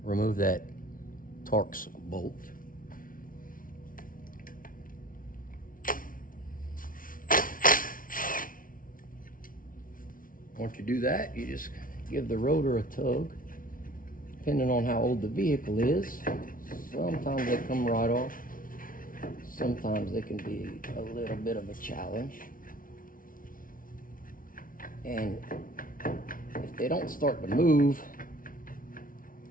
remove that Torx bolt. Once you do that, you just give the rotor a tug. Depending on how old the vehicle is, sometimes they come right off. Sometimes they can be a little bit of a challenge. And if they don't start to move,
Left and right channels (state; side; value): late; right; 0.40 ms